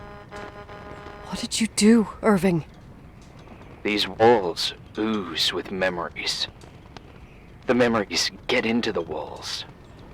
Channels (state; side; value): identical; both; correlation 1.00